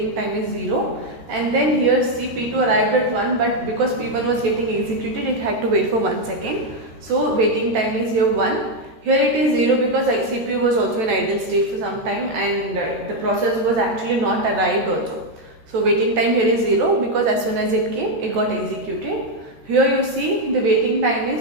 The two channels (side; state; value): left; late; 14 ms